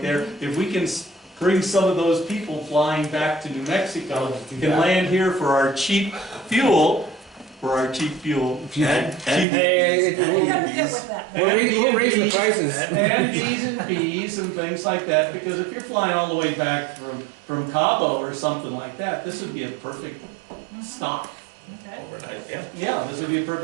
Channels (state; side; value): drops out; left; at 9.5 s